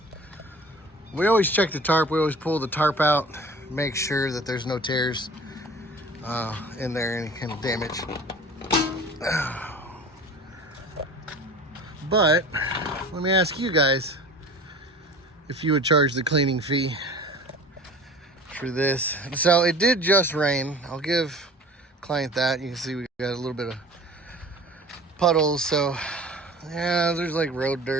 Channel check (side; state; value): both; normal; correlation 0.42